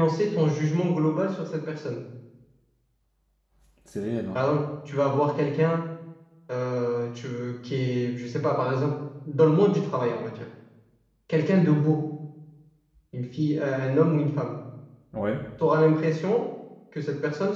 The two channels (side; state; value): both; identical; correlation 1.00